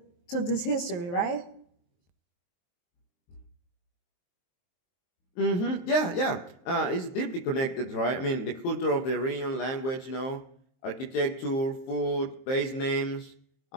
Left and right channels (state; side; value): late; right; 23 ms